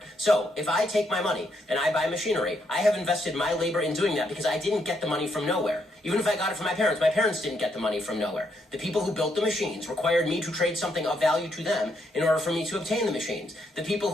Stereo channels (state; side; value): normal; both; correlation 0.76